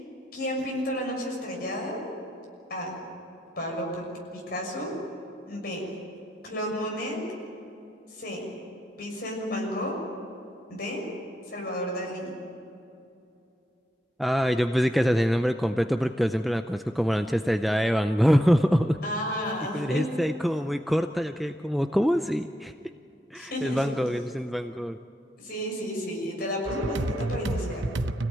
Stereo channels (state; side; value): normal; both; correlation 0.82